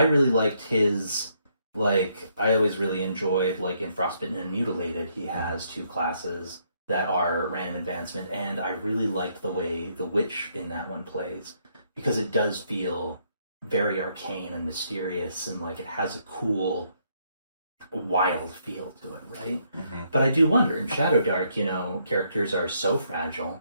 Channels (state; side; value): inverted; both; correlation -0.72